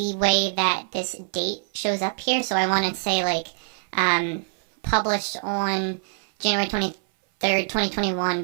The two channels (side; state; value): left; silent; 58 dB below the other